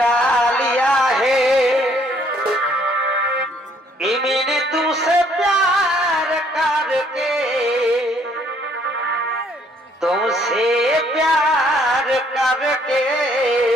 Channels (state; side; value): normal; both; correlation 0.65